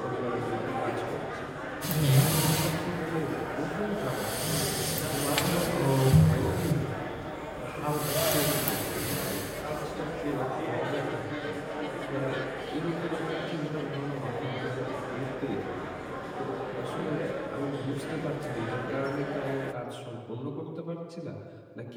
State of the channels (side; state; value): both; identical; correlation 1.00